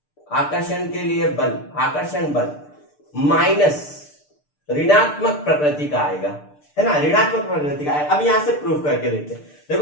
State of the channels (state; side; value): late; right; 6.7 ms